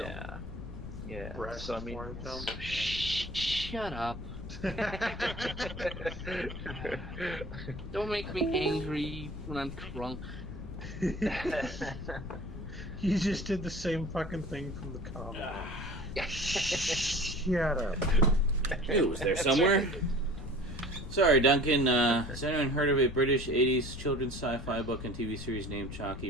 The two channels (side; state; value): left; noise; rumble, 10 dB below the sound